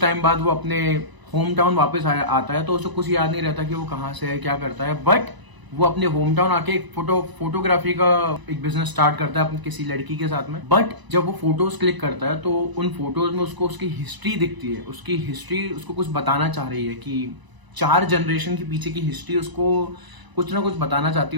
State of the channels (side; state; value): left; late; 1.0 ms